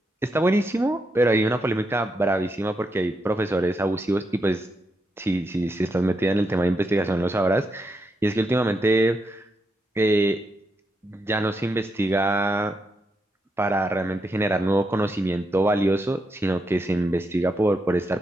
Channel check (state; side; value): normal; both; correlation 0.82